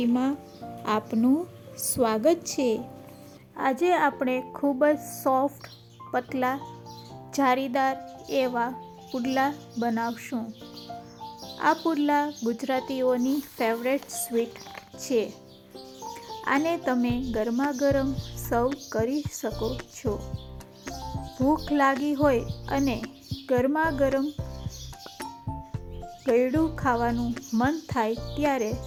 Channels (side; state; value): both; identical; correlation 1.00